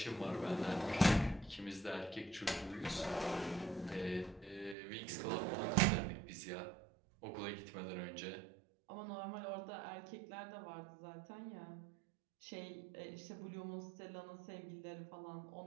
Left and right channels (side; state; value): left; drops out; at 4.8 s